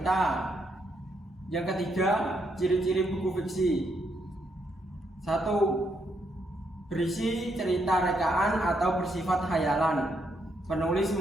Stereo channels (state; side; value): normal; both; correlation 0.76